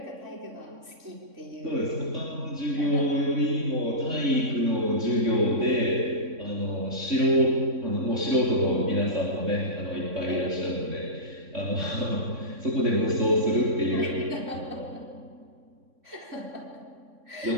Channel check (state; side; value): late; left; 3.6 ms